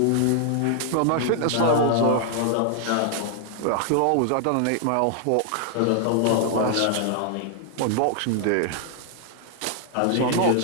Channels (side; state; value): both; different; correlation 0.00